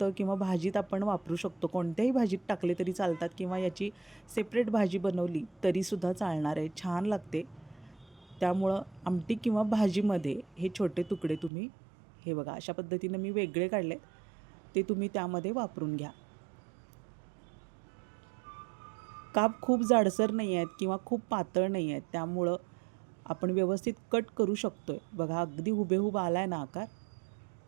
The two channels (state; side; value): drops out; left; at 11.5 s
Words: किंवा भाजीत आपण वापरू शकतो. कोणत्याही भाजीत टाकले तरी चालतात किंवा याची सेपरेट भाजी बनवली तरीसुद्धा चालणार आहे, छान लागते. त्यामुळं आमटी किंवा भाजीमध्ये हे छोटे तुकडे तुम्ही, हे बघा अशा पद्धतीनं मी वेगळे काढले, ते तुम्ही त्यामध्ये वापरून घ्या. काप खूप जाडसर नाही आहेत किंवा खूप पातळ नाही आहेत, त्यामुळं आपण व्यवस्थित कट करू शकतो आहे. बघा, अगदी हुबेहूब आला आहे ना आकार.